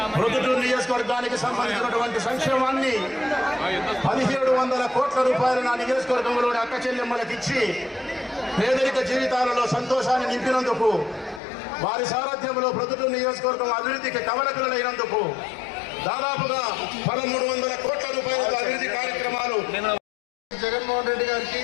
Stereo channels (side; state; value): right; drops out; at 11.4 s